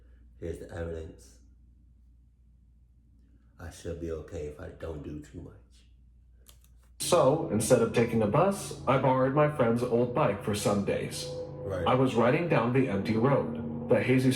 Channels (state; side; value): identical; both; correlation 1.00